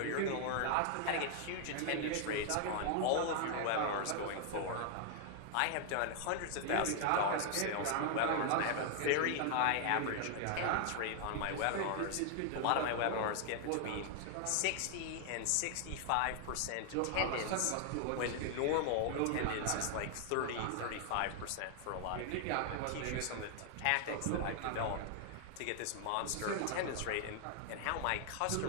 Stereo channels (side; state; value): both; different; correlation 0.00